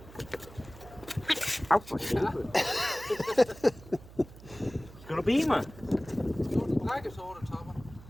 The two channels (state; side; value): noise; right; hum, 19 dB below the sound